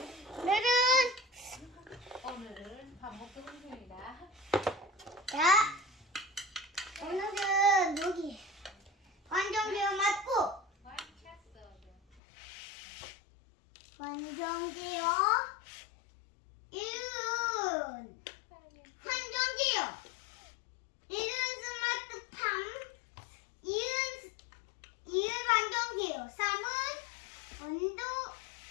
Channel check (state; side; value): drops out; right; at 12.2 s